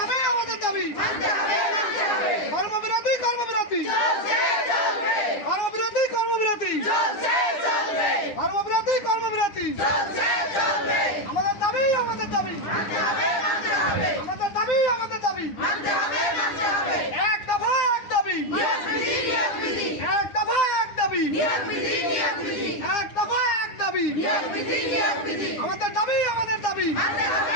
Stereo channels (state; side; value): late; right; 9.9 ms